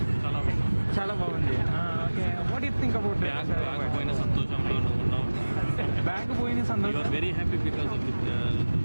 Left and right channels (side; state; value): both; inverted; correlation -1.00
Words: చాలా బాగుంది. Okay, what you think about bag పోయిన సంతోషంలో నువ్వు ఉన్నావు. బ్యాగ్ పోయిన సంతోషం. You are very happy because of